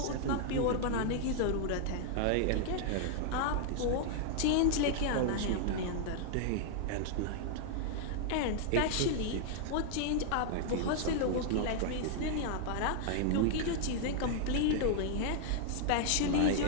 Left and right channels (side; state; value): both; different; correlation -0.01